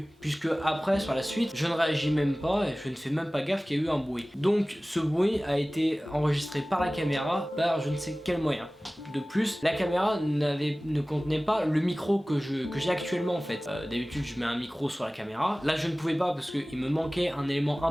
puisque après, sur la suite, je ne réagis même pas et je ne fais même pas gaffe qu'il y a eu un bruit. Donc ce bruit a été enregistré par la caméra, par je ne sais quel moyen. De plus, la caméra ne contenait pas le micro que j'ai actuellement en fait. D'habitude, je mets un micro sur la caméra. Là, je ne pouvais pas parce qu'il me manquait un élément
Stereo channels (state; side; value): normal; both; correlation 0.98